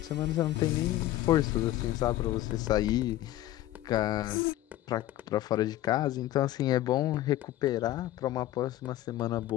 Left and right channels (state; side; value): quieter; right; 14.6 dB